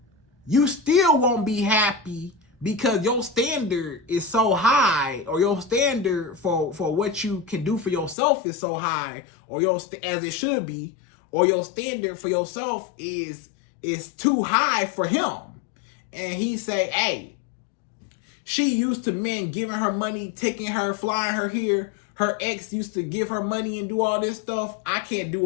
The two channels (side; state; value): right; drops out; at 8.2 s